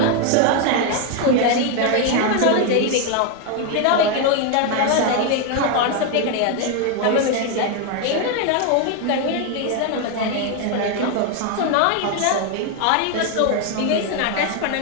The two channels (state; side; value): different; both; correlation 0.01